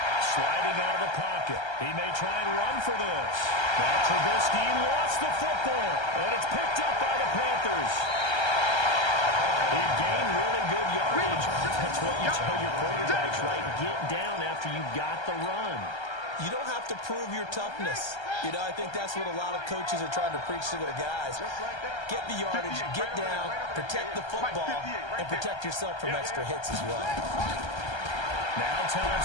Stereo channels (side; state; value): right; late; 1.3 ms